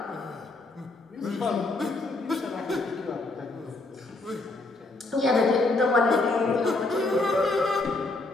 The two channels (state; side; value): quieter; right; 3.1 dB